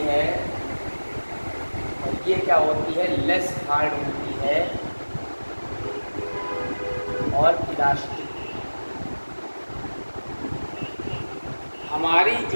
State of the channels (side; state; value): both; inverted; correlation -1.00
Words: है, और ये क्या होती है, लेस हार्ड होती है और इलास्टिक। हमारी